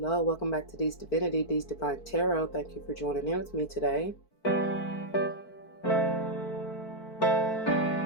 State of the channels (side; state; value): right; late; 4.5 ms